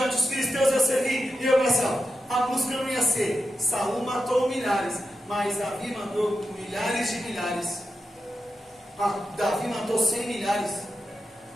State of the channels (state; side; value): normal; both; correlation 0.89